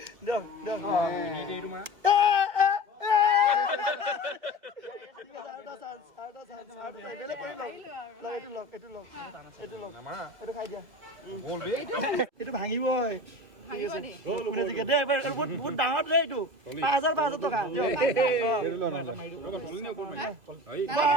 এইটো ভাঙিবই বহুত ডাঙৰ দে এইটো 5,000 টকা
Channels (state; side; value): late; left; 2.6 ms